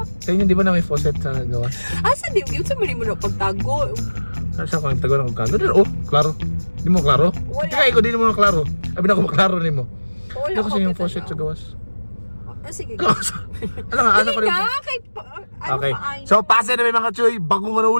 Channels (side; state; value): both; inverted; correlation -1.00